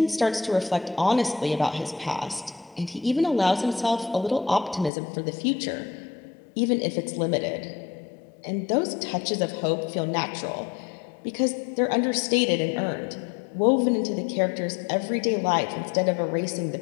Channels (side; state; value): right; drops out; at 4.9 s